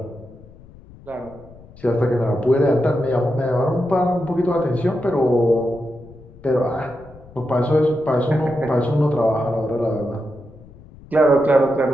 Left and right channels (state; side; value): noise; left; rumble, 22 dB below the sound